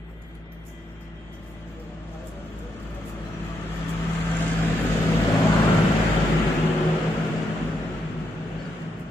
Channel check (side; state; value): both; normal; correlation 0.80